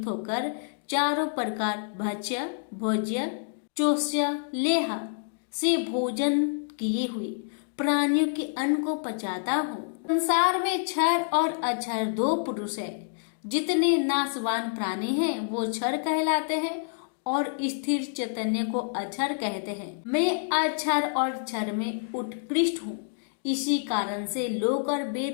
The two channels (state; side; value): silent; right; digital silence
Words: होकर चारों प्रकार भक्ष्य भोज्य चोष्य लेह से भोजन किए हुए प्राणियों के अन्न को पचाता हूँ। संसार में क्षर और अक्षर दो पुरुष है। जितने नाशवान प्राणी हैं वो क्षर कहलाते हैं और स्थिर चैतन्य को अक्षर कहते हैं। मैं अक्षर और क्षर में उत्कृष्ट हूँ। इसी कारण से लोक और